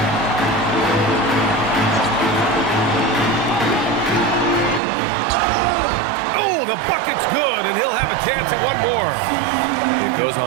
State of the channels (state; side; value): drops out; left; at 4.8 s